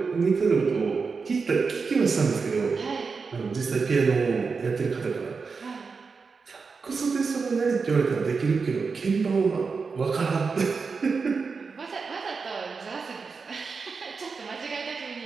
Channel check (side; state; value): left; quieter; 4.9 dB